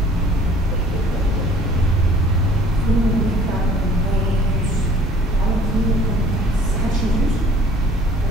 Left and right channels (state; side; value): normal; both; correlation 0.52